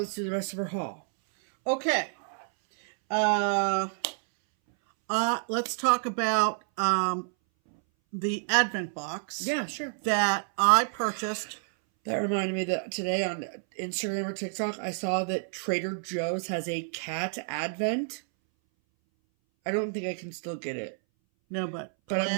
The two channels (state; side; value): silent; left; 58 dB below the other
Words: do the rest of our haul. Okay. Let's talk about the Advent box. Yeah, sure. That I purchased. That reminded me that today on Instagram or TikTok, I saw that Trader Joe's has a cat Advent. I don't think I can still get it. No, but I'm